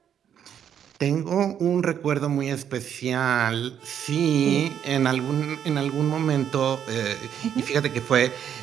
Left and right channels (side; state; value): left; quieter; 9.0 dB